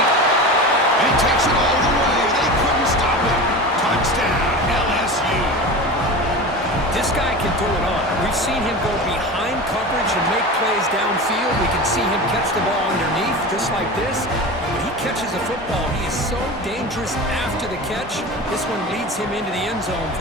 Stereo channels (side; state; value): both; normal; correlation 0.30